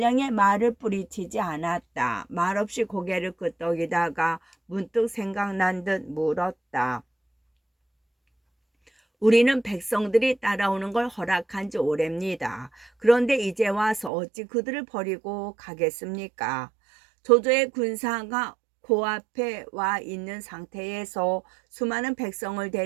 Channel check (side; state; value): left; drops out; at 14.1 s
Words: 말을 뿌리치지 않았다. 말없이 고개를 끄덕이다가 문득 생각난 듯 물었다. 우리는 백성들이 따라오는 걸 허락한 지 오래입니다. 그런데 이제 와서 어찌 그들을 버리고 가겠습니까? 조조의 군사가 코앞에 와 있는 상태에서 수많은 백성을